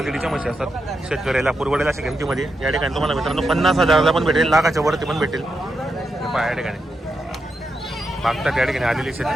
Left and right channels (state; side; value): normal; both; correlation 0.85